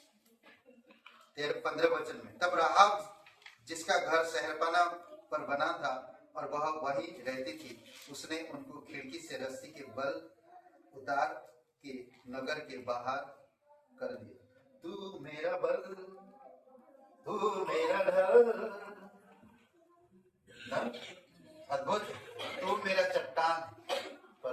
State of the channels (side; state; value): both; identical; correlation 1.00